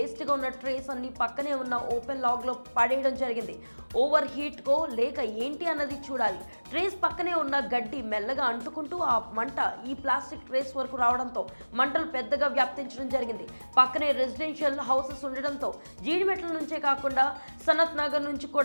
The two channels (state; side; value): inverted; both; correlation -1.00